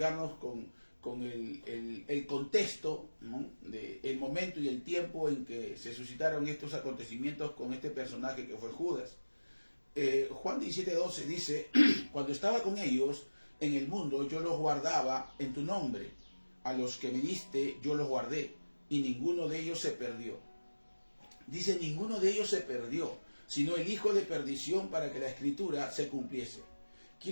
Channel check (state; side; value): inverted; both; correlation -1.00